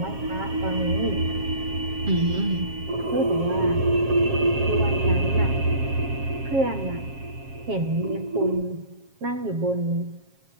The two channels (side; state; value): left; late; 7.4 ms